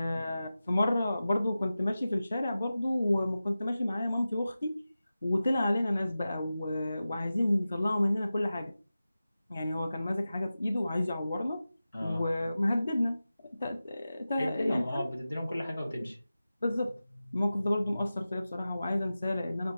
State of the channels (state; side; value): inverted; both; correlation -0.94